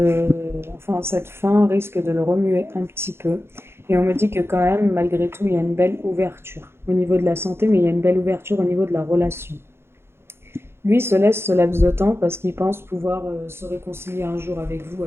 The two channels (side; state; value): left; late; 0.12 ms